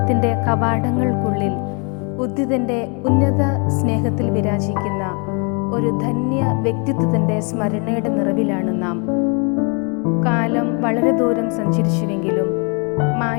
കവാടങ്ങൾക്കുള്ളിൽ ഉദ്ധിതൻ്റെ ഉന്നത സ്നേഹത്തിൽ വിരാജിക്കുന്ന ഒരു ധന്യ വ്യക്തിത്വത്തിൻ്റെ സ്മരണയുടെ നിറവിലാണ് നാം. കാലം വളരെ ദൂരം സഞ്ചരിച്ചുവെങ്കിലും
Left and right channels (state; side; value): quieter; right; 35.1 dB